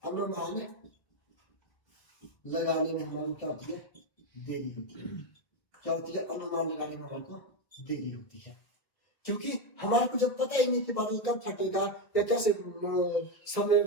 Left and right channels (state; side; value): late; right; 1.6 ms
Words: हमारे क्या होती है, देरी होती है। क्या होती है, अनुमान लगाने में हमारे को देरी होती है। क्योंकि हमारे को जब पता ही नहीं कि बादल कब फटेगा या कैसे समय में